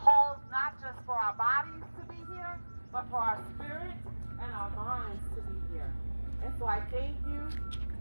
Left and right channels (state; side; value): inverted; both; correlation -1.00